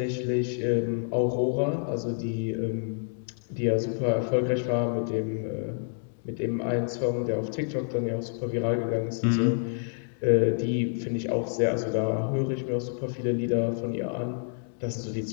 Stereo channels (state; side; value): silent; right; digital silence